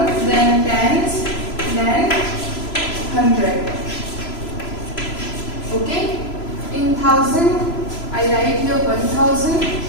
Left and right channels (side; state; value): right; late; 3.0 ms